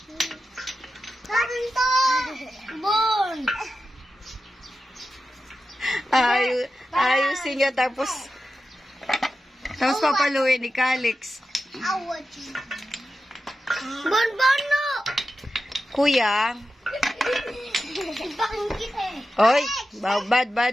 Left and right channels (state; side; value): normal; both; correlation 0.91